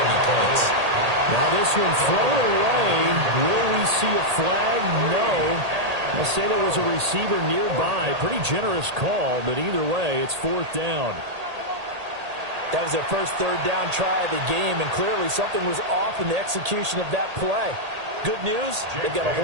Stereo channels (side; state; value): left; late; 1.8 ms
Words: any points. Now this one thrown away. Will we see a flag? No. I'll say there was a receiver nearby. Pretty generous call, but either way, it's 4th down. That was their first 3rd down try of the game, and clearly something was off in the execution of that play. Good news, they've got a